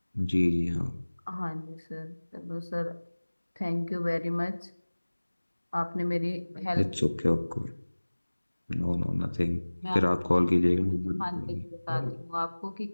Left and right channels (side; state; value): both; inverted; correlation -1.00